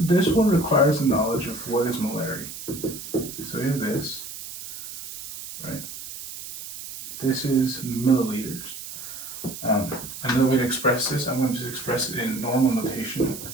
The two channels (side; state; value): right; noise; hiss, 10 dB below the sound